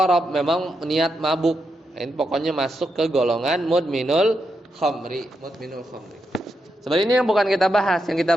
memang niat mabuk. Ini pokoknya masuk ke golongan mudminul khamri. Sebenarnya ini yang bukan kita bahas. Yang kita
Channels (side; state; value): both; normal; correlation 0.84